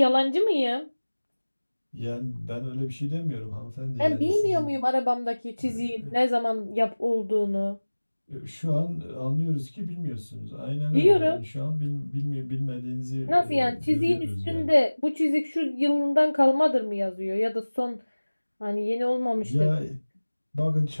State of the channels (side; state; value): both; inverted; correlation -1.00